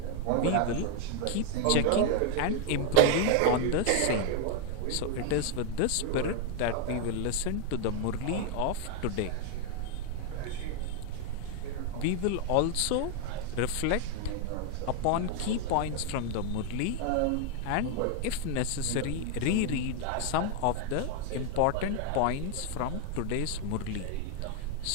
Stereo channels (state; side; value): different; both; correlation 0.00